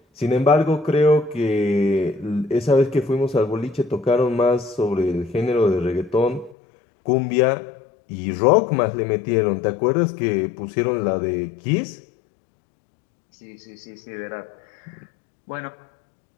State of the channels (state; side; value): drops out; right; at 6.6 s